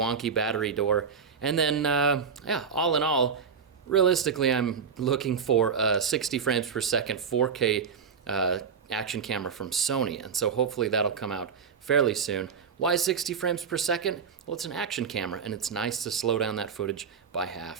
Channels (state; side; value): quieter; left; 6.3 dB